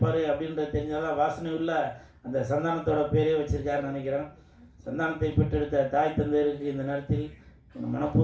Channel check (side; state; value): both; identical; correlation 1.00